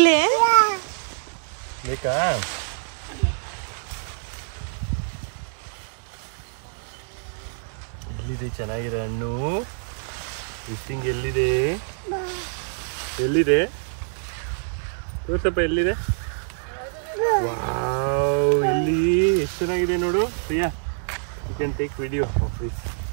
ಎಲ್ಲಿದೆ ಚೆನ್ನಾಗಿರೋ ಹಣ್ಣು? ಫಿಶಿಂಗ್ ಎಲ್ಲಿದೆ? ಎಲ್ಲಿದೆ ತೋರ್ಸಪ್ಪ, ಎಲ್ಲಿದೆ? ವಾವ್, ಇಲ್ಲಿ ಚೆನ್ನಾಗಿದೆ ನೋಡು Priya. You can take video of this.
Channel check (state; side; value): silent; left; 59 dB below the other